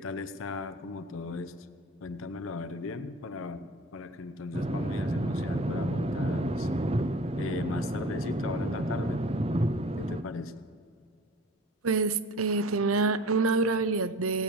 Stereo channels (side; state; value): both; normal; correlation 0.40